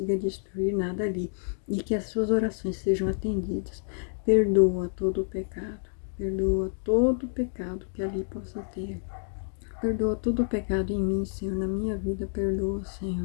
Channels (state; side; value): silent; right; digital silence